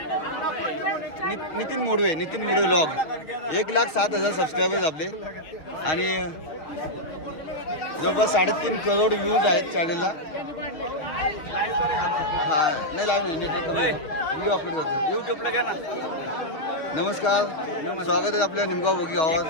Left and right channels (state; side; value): late; right; 6.3 ms